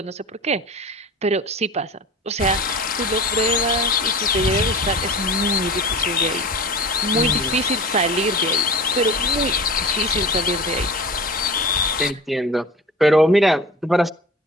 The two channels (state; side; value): normal; both; correlation 0.36